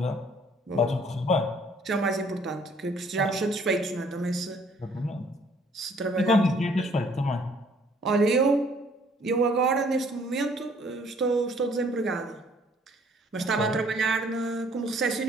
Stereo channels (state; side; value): normal; both; correlation 0.60